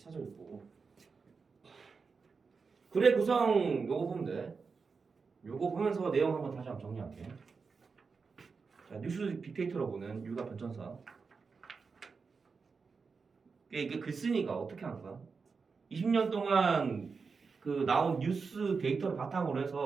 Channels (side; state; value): left; quieter; 5.0 dB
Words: 거고. 글의 구성 요거 보면 돼. 요거 보면서 내용 한번 다시 한번 정리할게. 자, 뉴스 빅데이터로 보는 육아 변천사. 이게 글쓴이가 어떻게 하는 거야? 20년 동안 그 나온 뉴스 데이터를 바탕으로